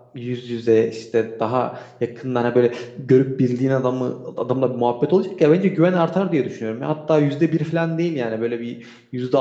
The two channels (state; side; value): identical; both; correlation 1.00